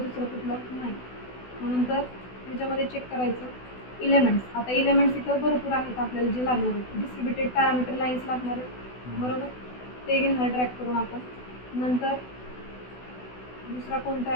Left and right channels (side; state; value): right; late; 16 ms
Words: कुठलं, नाही. नंतर ह्याच्यामध्ये चेक करायचं इलेमेंट्स. आता इलेमेंट्स इथं भरपूर आहेत आपल्याला जे लागणार आहेत. डिस्ट्रीब्युटेड पॅरामीटर लाईन्स लागणार आहेत, बरोबर, ते घेणार ड्रॅग करून आपण. नंतर दुसरा कोणता